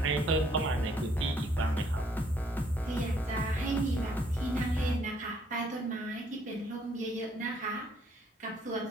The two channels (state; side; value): normal; both; correlation 0.66